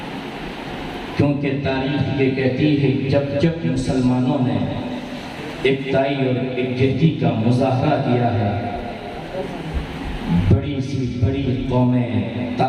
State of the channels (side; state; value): both; identical; correlation 1.00